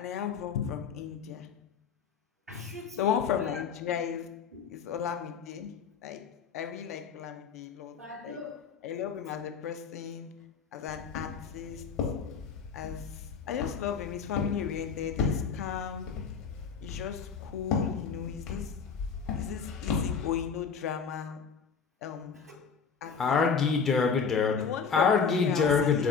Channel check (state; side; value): quieter; right; 6.0 dB